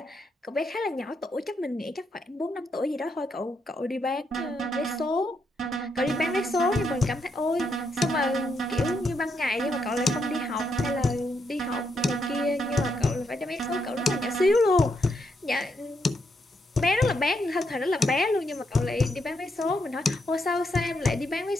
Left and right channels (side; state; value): both; normal; correlation 0.79